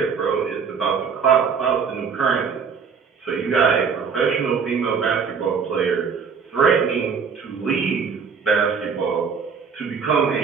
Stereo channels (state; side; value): quieter; left; 6.0 dB